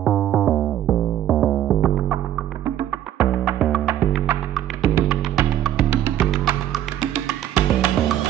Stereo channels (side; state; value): left; quieter; 11.7 dB